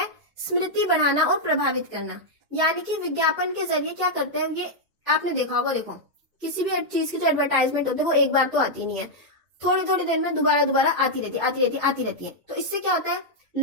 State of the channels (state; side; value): late; left; 2.0 ms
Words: स्मृति बढ़ाना और प्रभावित करना। यानी कि विज्ञापन के जरिए क्या करते हैं, ये आपने देखा होगा, देखो किसी भी चीज की जो एडवर्टाइजमेंट होती है वो एक बार तो आती नहीं है, थोड़ी थोड़ी देर में दोबारा आती रहती है। तो इससे क्या होता है